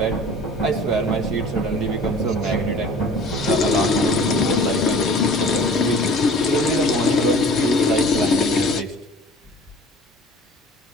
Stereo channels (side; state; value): both; normal; correlation 0.46